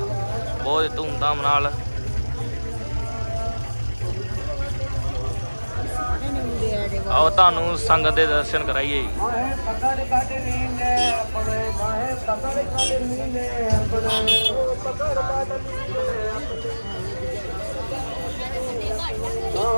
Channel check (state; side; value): inverted; both; correlation -1.00